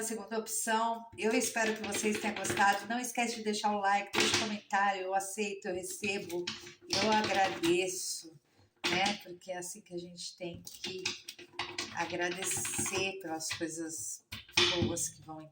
segunda opção. Eu espero que vocês tenham gostado. Não esquece de deixar o like, deixa um comentário. Eu aceito, eu recebo, eu agradeço, né? Porque é assim que a gente tem que agradecer pelas coisas boas que vão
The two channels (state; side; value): identical; both; correlation 1.00